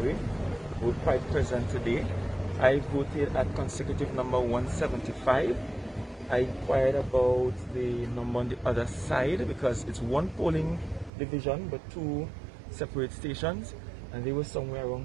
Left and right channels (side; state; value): left; drops out; at 11.1 s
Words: were quite present today. I voted at consecutive number 175. I inquired about the number on the other side because it's one polling division but 2 separate stations, and they were somewhere